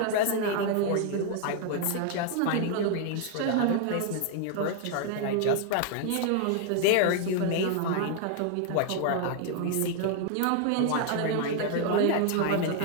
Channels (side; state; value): both; different; correlation 0.00